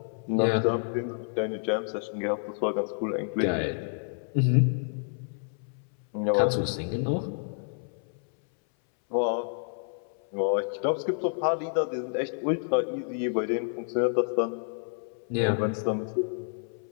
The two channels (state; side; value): silent; right; 59 dB below the other